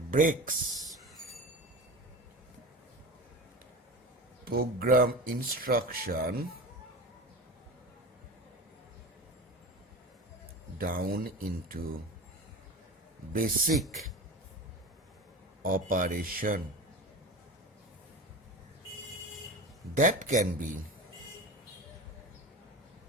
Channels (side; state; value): both; normal; correlation 0.30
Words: program instruction down into basic operation that can be